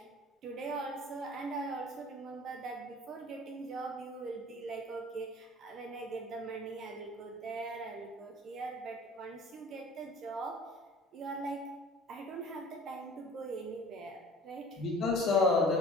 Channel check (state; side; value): normal; both; correlation 0.46